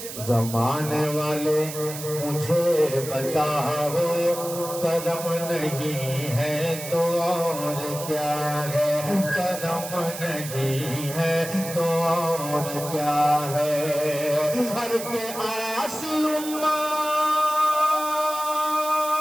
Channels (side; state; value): right; noise; hiss, 10 dB below the sound